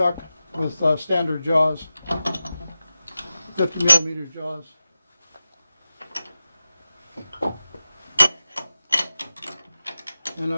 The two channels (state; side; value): inverted; both; correlation -0.94